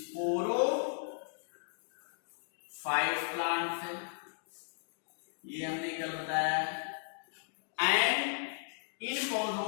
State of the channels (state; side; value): silent; right; digital silence